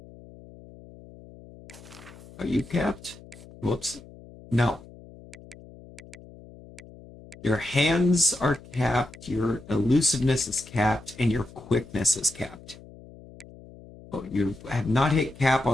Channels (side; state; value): left; noise; hum, 20 dB below the sound